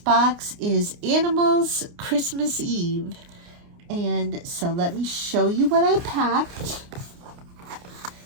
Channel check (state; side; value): late; left; 29 ms